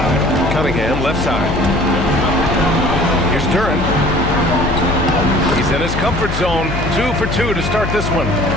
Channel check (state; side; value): noise; left; hum, 5 dB below the sound